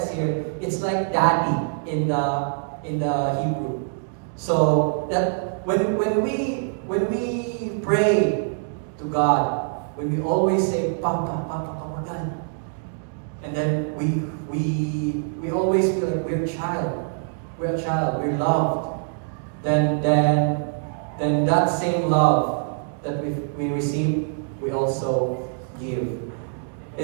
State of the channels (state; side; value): silent; left; digital silence